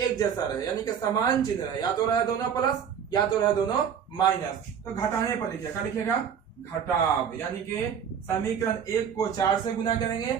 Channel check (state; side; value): quieter; left; 7.8 dB